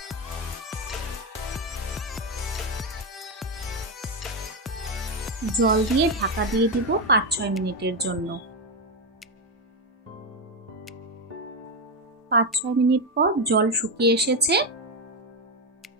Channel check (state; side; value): normal; both; correlation 0.08